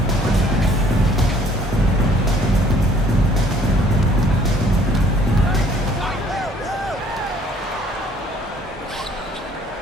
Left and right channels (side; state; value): both; normal; correlation 0.59